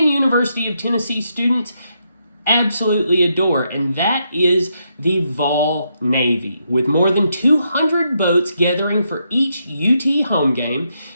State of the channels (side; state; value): both; inverted; correlation -0.79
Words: University of Tennessee students absolutely adore, and that is the Vol Navy. With more than 200 boats gathering for each UT home game,